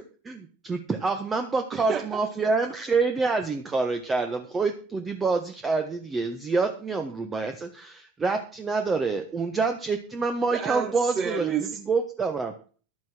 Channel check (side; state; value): left; quieter; 3.9 dB